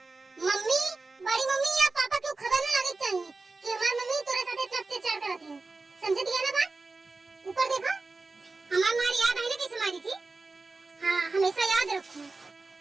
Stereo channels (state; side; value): quieter; left; 3.6 dB